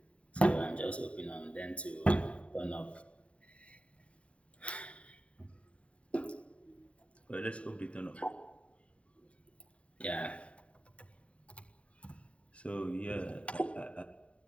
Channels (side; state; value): right; late; 0.062 ms